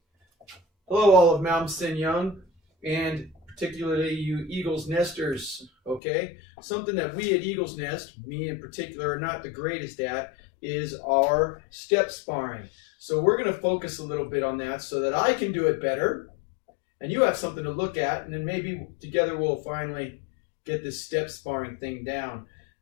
Hello, all of Malmsteen Young, and particularly you Eagles Nesters, okay? Something that we at Eagles Nest, me in particular, are not the greatest at is our step sparring. So we're going to focus a little bit on that so that I can do it better, and you have something to look at, and then maybe together we'll finally get this step sparring thing down.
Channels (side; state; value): right; drops out; at 6.0 s